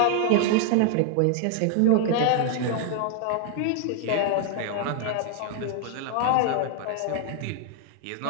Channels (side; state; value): both; different; correlation 0.00